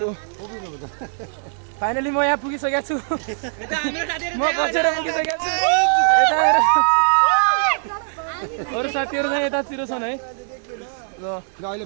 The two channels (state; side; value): silent; left; digital silence